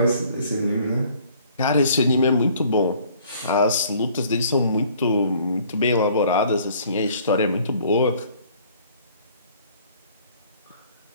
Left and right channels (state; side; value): inverted; both; correlation -0.57